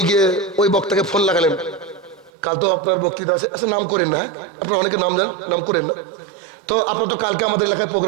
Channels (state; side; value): drops out; left; at 2.3 s